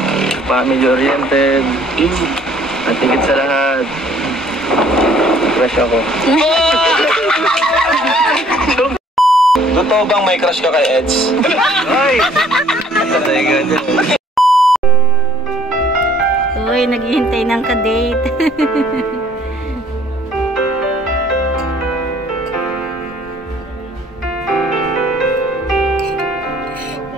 Family-oriented. At higit sa lahat, crush ako. Totoo bang may crush ka kay Eds? Ay! Uy, naghihintay ng ka-date.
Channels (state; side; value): normal; both; correlation 0.58